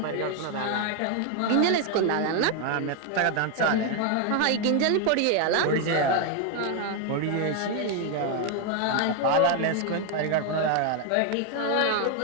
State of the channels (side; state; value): both; different; correlation 0.01